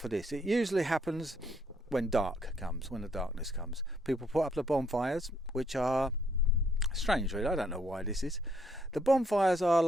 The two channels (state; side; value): normal; both; correlation 0.70